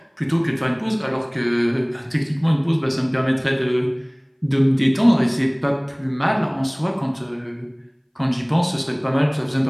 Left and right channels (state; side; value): identical; both; correlation 1.00